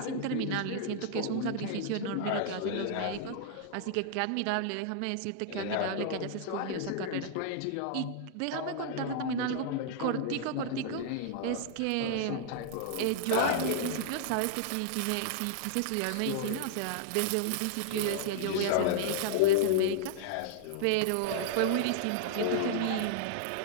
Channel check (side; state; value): both; different; correlation -0.01